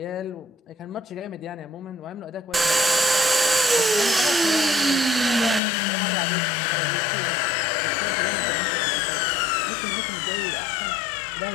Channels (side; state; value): right; drops out; at 5.6 s